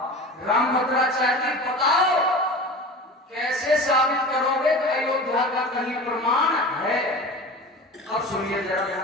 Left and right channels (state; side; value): normal; both; correlation 0.35